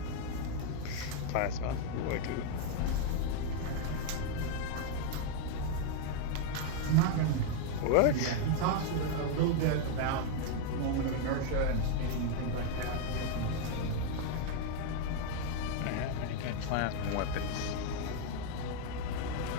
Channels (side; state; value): both; different; correlation 0.01